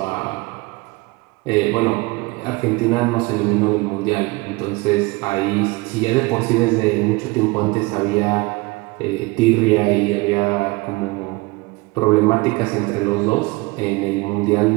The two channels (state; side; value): quieter; left; 24.1 dB